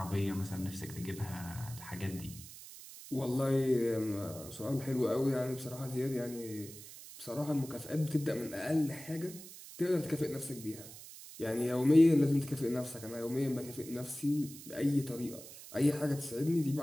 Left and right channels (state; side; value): noise; right; hiss, 15 dB below the sound